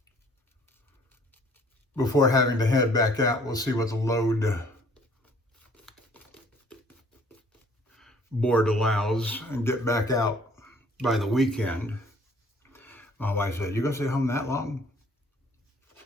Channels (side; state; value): both; normal; correlation 0.57